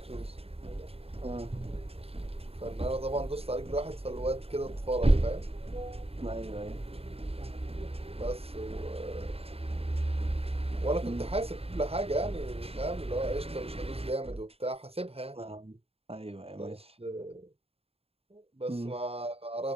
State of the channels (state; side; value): late; left; 0.29 ms